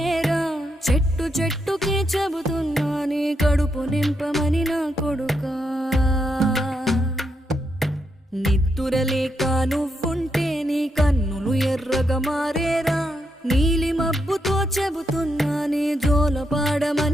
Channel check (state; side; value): normal; both; correlation 0.81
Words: చెట్టు చెట్టుకే చెబుతున్నా నీ కడుపు నింపమని నా కొడుకా. నిద్దురలేక నువ్వుంటే నీ కన్నులు ఎర్రగా మారేరా. నీలి మబ్బుతో చెబుతున్నా నీ